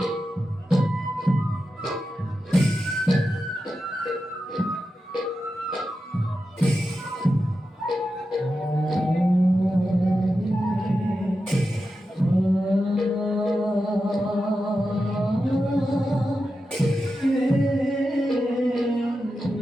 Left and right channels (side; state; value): both; normal; correlation 0.90